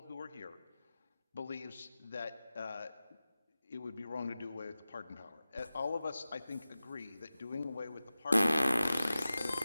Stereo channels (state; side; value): inverted; both; correlation -0.96